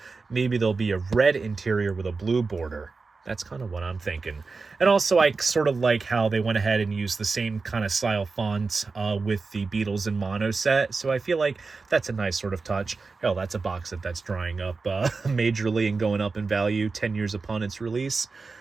maybe there'll be a red interior with a blue border. That's kind of what I'm thinking. And also, I sort of like how they went ahead and used the same kind of style font with the Beatles in mono set. So I feel like that's a nice sort of touch. Hell, that's a box set that's drying up majorly and going up in value 10 years upon its release.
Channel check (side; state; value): left; quieter; 4.2 dB